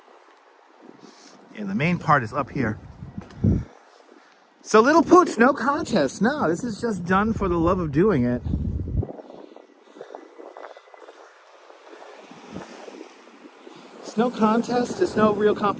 And the main part is up here. So little pooch, no contest. No, this is just done for the love of doing it. It's no contest, it's no real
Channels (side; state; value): both; identical; correlation 1.00